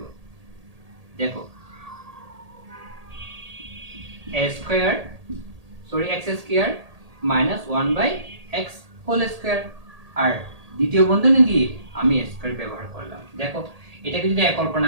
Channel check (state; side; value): late; left; 1.8 ms